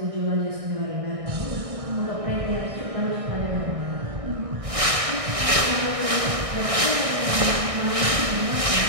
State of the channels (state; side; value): late; left; 1.6 ms